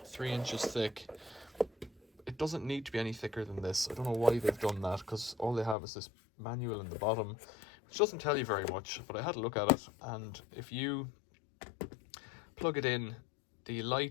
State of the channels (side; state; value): right; drops out; at 5.8 s